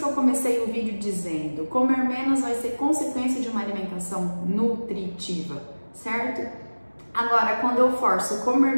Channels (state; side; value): inverted; both; correlation -1.00